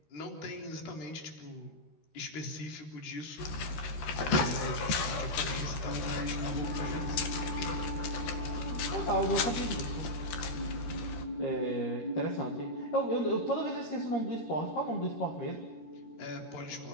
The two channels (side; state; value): right; late; 13 ms